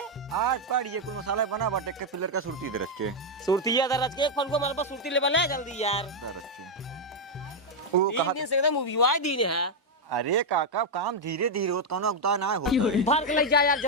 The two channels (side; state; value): both; normal; correlation 0.01